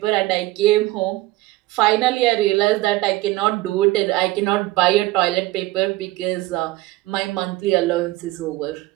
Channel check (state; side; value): quieter; left; 18.2 dB